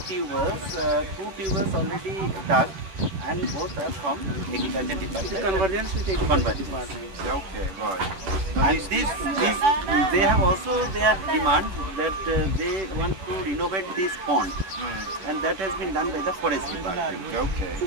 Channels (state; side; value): late; left; 10 ms